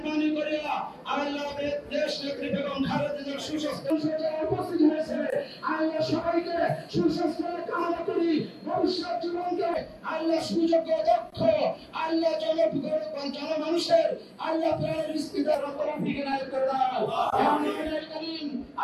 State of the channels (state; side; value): identical; both; correlation 1.00